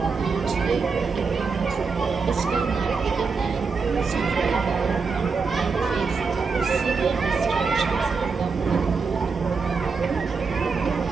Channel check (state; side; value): quieter; left; 4.9 dB